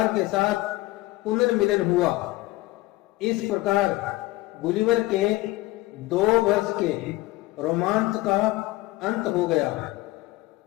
के साथ पुनर्मिलन हुआ। इस प्रकार गुलिवर के 2 वर्ष के रोमांच का अंत हो गया।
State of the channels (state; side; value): quieter; right; 18.8 dB